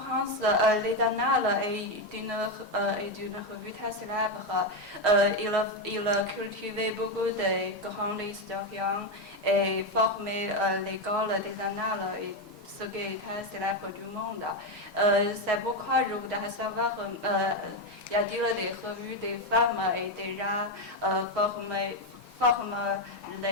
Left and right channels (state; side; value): normal; both; correlation 0.08